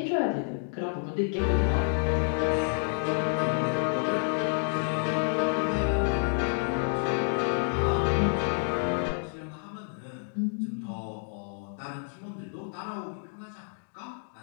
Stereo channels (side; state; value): right; silent; digital silence